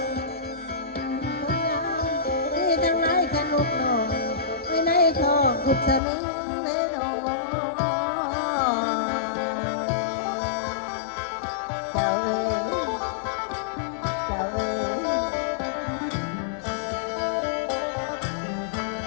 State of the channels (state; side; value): drops out; right; at 6.0 s